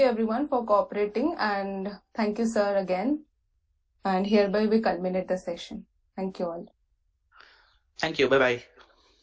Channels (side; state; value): both; identical; correlation 1.00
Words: everyone for cooperating, and thank you, sir, again. And hereby we culminate the session. Thank you all. Thank you. Bye bye.